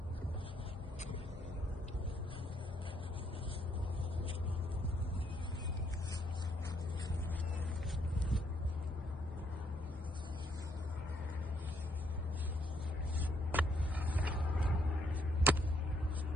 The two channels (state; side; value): normal; both; correlation 0.72